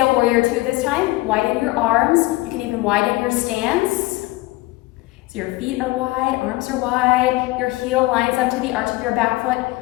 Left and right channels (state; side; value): quieter; right; 19.9 dB